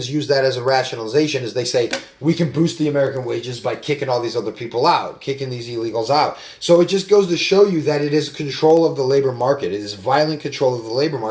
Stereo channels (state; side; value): identical; both; correlation 1.00